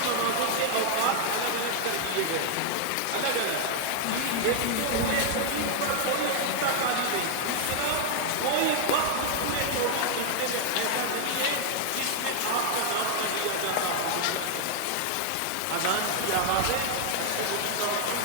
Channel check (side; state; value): both; different; correlation 0.00